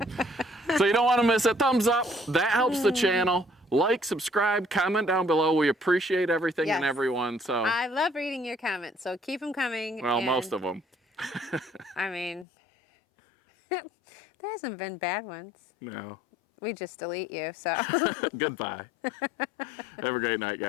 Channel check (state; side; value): drops out; right; at 12.5 s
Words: So you don't want to miss it. Thumbs up. That helps the channel. Like, subscribe, comment down below. We appreciate everything and Yes. everyone. So I love reading your comments, so keep them coming. well, and, most of them. I mean, there hasn't been bad ones. No. We just delete you, so. Goodbye. Have a great night,